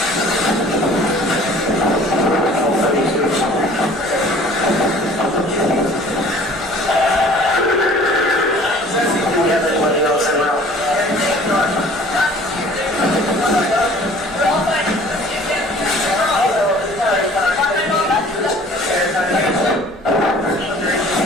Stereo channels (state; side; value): normal; both; correlation 0.50